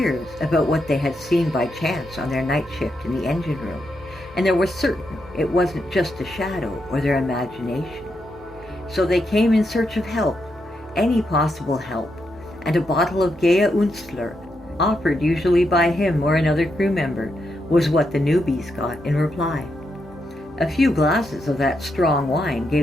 about what they had seen by chance on their night shift in the engine room, and they were certain it wasn't just a shadow or their imagination. So they came in search of help, any possible help, and a bottle of Gea Unstler, offered usually by him or another crew member, was what the newbies got in reply. A few glasses of that strong wine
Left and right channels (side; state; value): both; normal; correlation 0.82